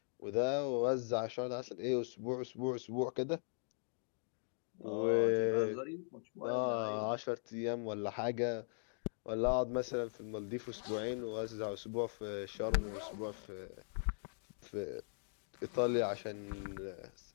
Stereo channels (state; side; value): silent; right; digital silence